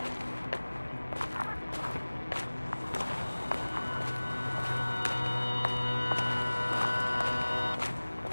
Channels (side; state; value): both; inverted; correlation -1.00